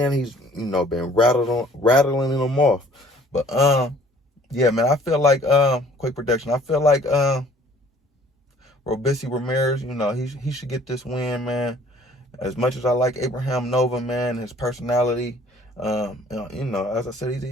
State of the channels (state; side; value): normal; both; correlation 0.54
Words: he's been rattling them off. But yeah, man, I feel like quick prediction. I feel like Robeisy Ramirez, he should get this win, man. As much as I like Abraham Nova, man, his personality. As I said,